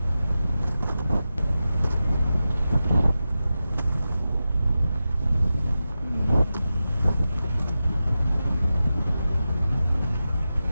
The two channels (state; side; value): inverted; both; correlation -0.92